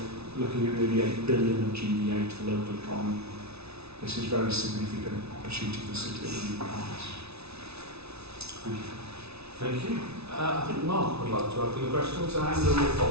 looking at nearly 8 billion of GBA to the local economy. This is a very significant opportunity for the city of the economies. Thank you. Thank you. I think Mark would like to open the question, so Andrew will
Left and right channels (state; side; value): late; left; 0.80 ms